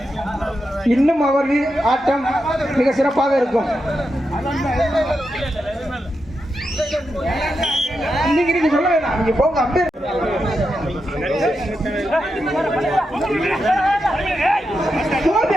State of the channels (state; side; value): normal; both; correlation 0.87